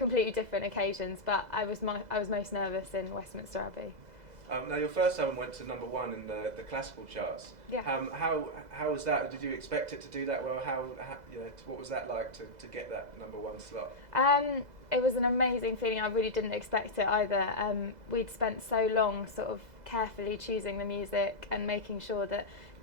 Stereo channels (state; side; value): late; left; 2.0 ms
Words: different occasions, but I was most nervous in Westminster Abbey. Now your first album went to #1 in the classical charts. Yeah. How was that? Did you expect it to do that well? What was that like to get that #1 slot? It was an amazing feeling. I really didn't expect it either. We'd spent so long sort of carefully choosing the music and making sure that